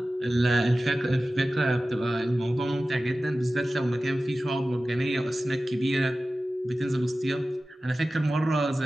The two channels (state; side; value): normal; both; correlation 0.95